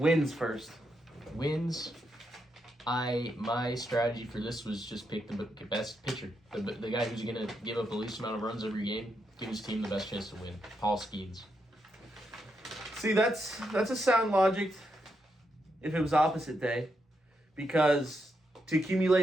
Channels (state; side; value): normal; both; correlation 0.82